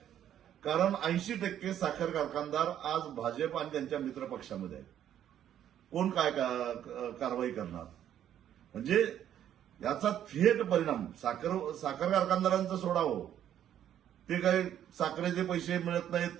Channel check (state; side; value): quieter; left; 10.5 dB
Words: कारण 80% साखर कारखानदार आज भाजप आणि त्यांच्या मित्र पक्षामध्ये आहेत. कोण काय कारवाई करणार? म्हणजे याचा थेट परिणाम साखर कारखानदारांचं सोडावं, ते काही साखरेचे पैसे मिळत